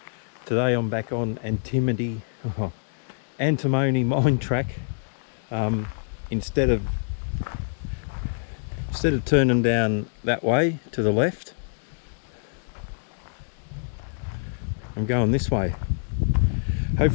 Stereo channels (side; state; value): right; silent; digital silence